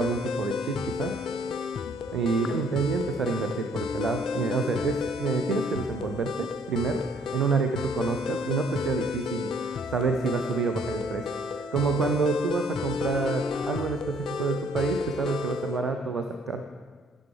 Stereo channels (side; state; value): both; normal; correlation 0.62